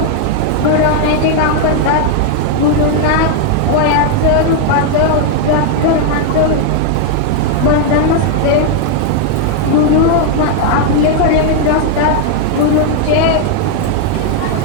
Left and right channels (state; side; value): different; both; correlation 0.00